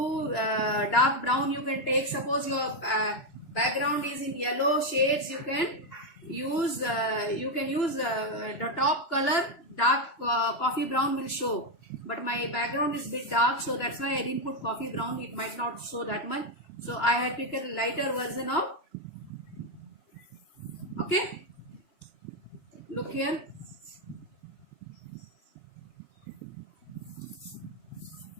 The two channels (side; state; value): right; late; 3.0 ms